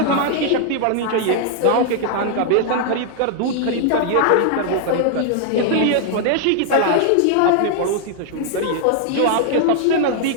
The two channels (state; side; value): different; both; correlation 0.00